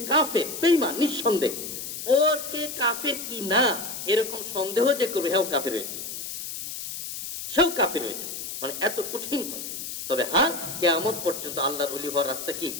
কাফের, বেঈমান, নিঃসন্দেহ। ওর কে কাফের কি না এরকম সন্দেহ যে করবে, হেও কাফের হয়েছে, সেও কাফের হয়েছে, মানে এত কঠিন কথা। তবে হ্যাঁ, কিয়ামত পর্যন্ত আল্লাহর ওলি হওয়ার রাস্তা কি?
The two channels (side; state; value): left; noise; hiss, 7 dB below the sound